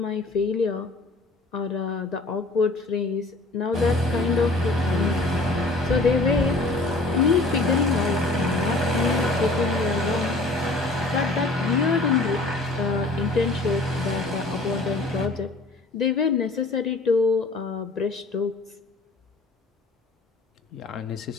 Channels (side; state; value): right; quieter; 3.0 dB